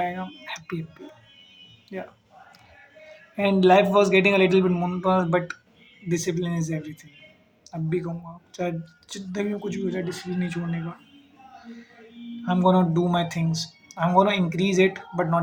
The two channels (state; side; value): identical; both; correlation 1.00